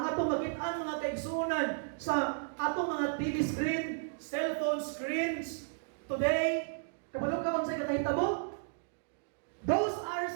atong makitaan mga kaigsunan sa atong mga TV screen, cellphone screens, today, kabalo ka sa kakahitabo? Those are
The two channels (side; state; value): left; silent; digital silence